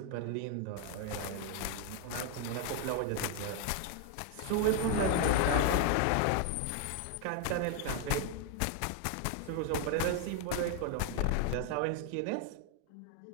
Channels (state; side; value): different; both; correlation 0.01